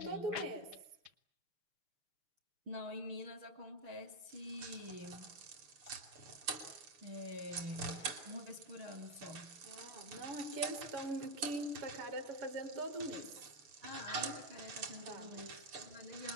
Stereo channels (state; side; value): late; left; 6.8 ms